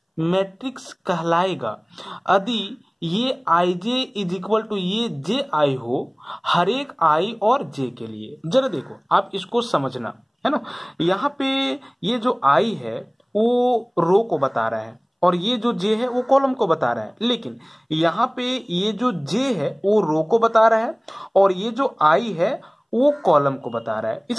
matrix कहलाएगा यदि ये i j is equal to ये जे आई हो हर एक आई और जे के लिए। जरा देखो आप इसको समझना, है ना। यहाँ पे ये जो आई है वो रो को बता रहा है और ये जो जे है वो कॉलम को बता रहा है, लेकिन यहाँ पे ये जो जे है वो रो को बता रहा है और ये जो आई है वो कॉलम को बता रहा है।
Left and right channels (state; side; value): identical; both; correlation 1.00